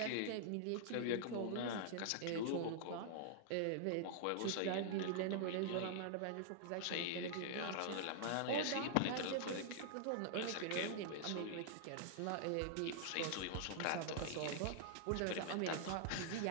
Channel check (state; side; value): different; both; correlation -0.01